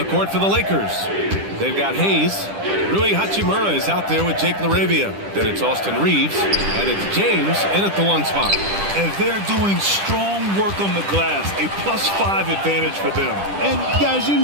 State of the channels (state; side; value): late; left; 10 ms